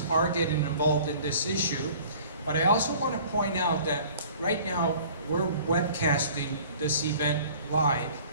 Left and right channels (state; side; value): inverted; both; correlation -0.49